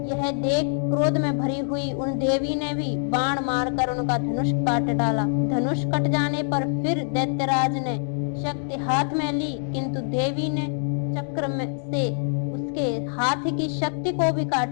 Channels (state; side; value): silent; right; 61 dB below the other